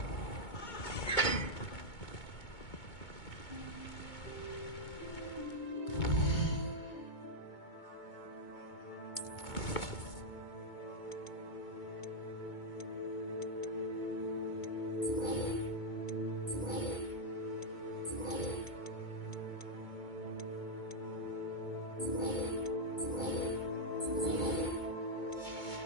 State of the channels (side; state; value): right; late; 2.2 ms